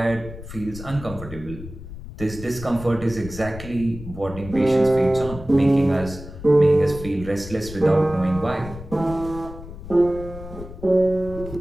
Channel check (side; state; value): left; noise; rumble, 13 dB below the sound